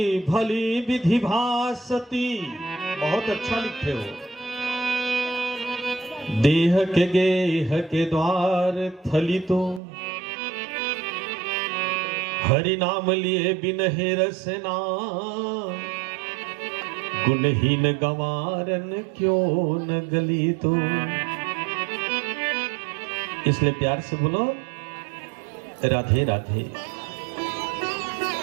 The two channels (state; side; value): drops out; left; at 9.8 s